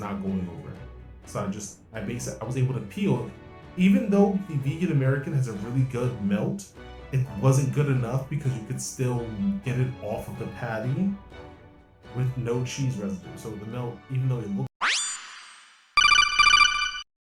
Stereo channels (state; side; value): identical; both; correlation 1.00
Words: going over. So I was able to peel. Even though the vegan American has a really good melt, it wasn't good enough because you could still get it off of the patty with no cheese residue. So the melt, even though it looked